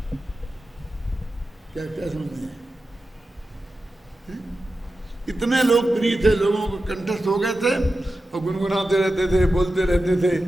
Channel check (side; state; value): both; normal; correlation 0.92